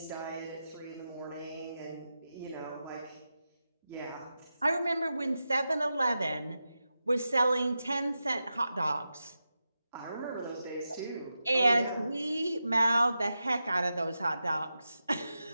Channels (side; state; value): both; inverted; correlation -0.90